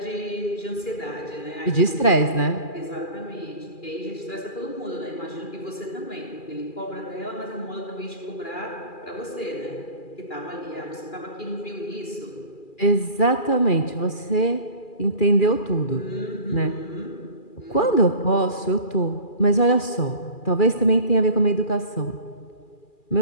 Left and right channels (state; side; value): late; right; 2.4 ms